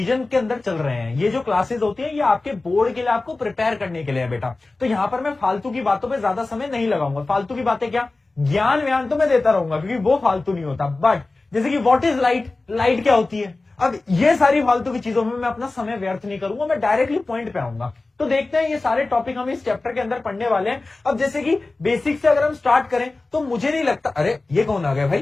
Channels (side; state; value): right; quieter; 3.3 dB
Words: के अंदर चल रहे हैं। ये जो क्लासेस होती है ये आपके बोर्ड के लिए, आपको प्रिपेयर करने के लिए है बेटा। तो यहां पर मैं फालतू की बातों पे ज्यादा समय नहीं लगाऊंगा। फालतू की बातें क्या, ज्ञान व्यान तो मैं देता रहूंगा क्योंकि वो फालतू नहीं होता। बट जैसे कि व्हाट इज लाइट, लाइट क्या होती है, अब ये सारी फालतू की चीजों में मैं अपना समय व्यर्थ नहीं करूंगा, मैं डायरेक्टली पॉइंट पे आऊंगा। तो देखते हैं ये सारे टॉपिक हम इस चैप्टर के अंदर पढ़ने वाले हैं। अब जैसे कि बेसिक से अगर हम स्टार्ट करें तो मुझे नहीं लगता, अरे ये कौन आ गया भाई,